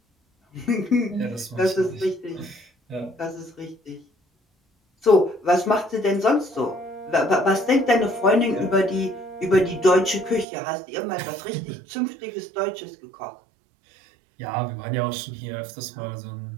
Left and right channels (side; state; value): left; drops out; at 10.5 s